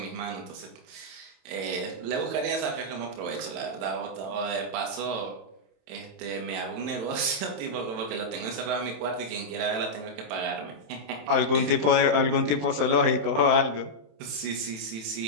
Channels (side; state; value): left; late; 27 ms